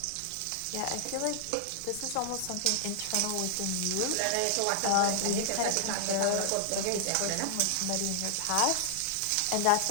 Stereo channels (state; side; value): different; both; correlation 0.00